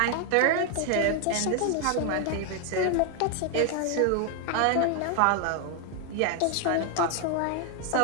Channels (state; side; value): different; both; correlation 0.01